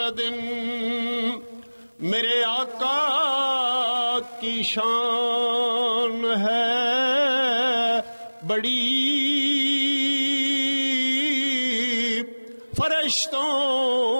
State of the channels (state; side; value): inverted; both; correlation -1.00